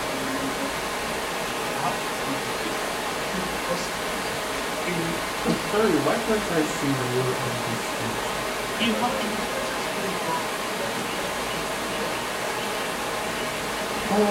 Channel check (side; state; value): both; identical; correlation 1.00